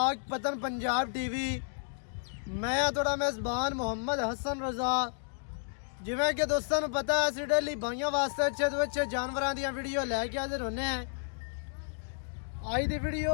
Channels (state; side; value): silent; right; digital silence